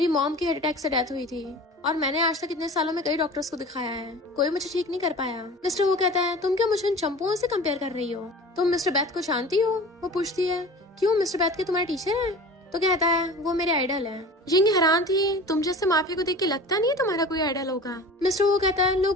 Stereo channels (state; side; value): normal; both; correlation 0.39